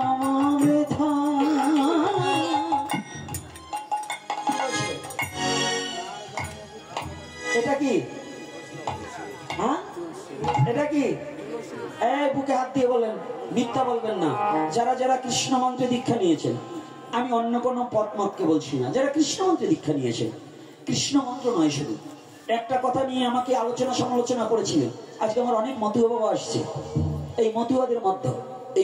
বৃথা। এটা কি? হ্যাঁ, এটা কি? এই বুকে হাত দিয়ে বলেন, মিথ্যা বলবেন না। যারা যারা কৃষ্ণ মন্ত্রে দীক্ষা নিয়েছেন, আমি অন্য কোনো পথ মতকে বলছি না, যারা কৃষ্ণ মন্ত্রে দীক্ষা নিয়েছেন, কৃষ্ণ মন্ত্র নয় শুধু, একটা কথা নিয়ে আমাকে আলোচনা সমালোচনা করেছিলেন। আজকে আমার অনেক মতুয়া বাবা আসছে, এই মতুয়াদের মধ্যে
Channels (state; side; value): identical; both; correlation 1.00